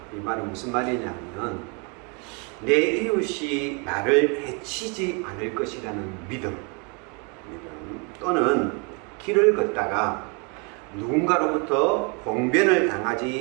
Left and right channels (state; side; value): quieter; left; 33.8 dB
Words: 이 말은 무슨 말이냐면 내 이웃이 나를 해치지 않을 것이라는 믿음 또는 길을 걷다가 누군가로부터 봉변을